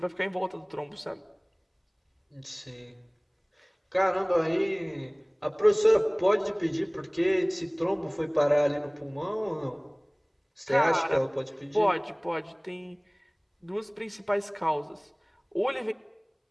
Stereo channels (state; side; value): identical; both; correlation 1.00